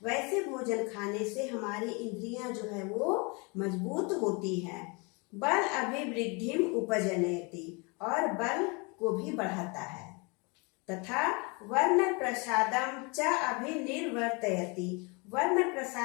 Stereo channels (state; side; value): quieter; right; 30.1 dB